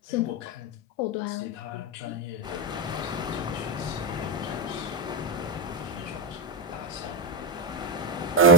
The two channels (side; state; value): both; normal; correlation 0.07